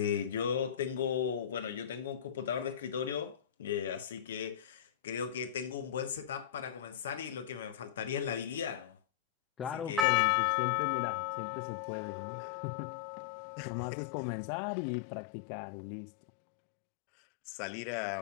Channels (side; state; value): right; drops out; at 10.1 s